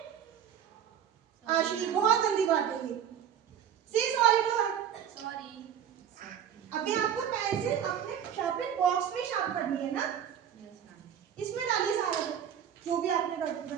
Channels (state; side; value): quieter; left; 9.1 dB